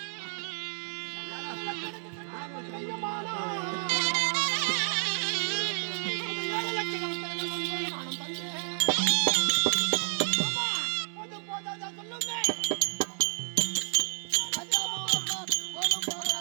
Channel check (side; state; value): left; silent; 58 dB below the other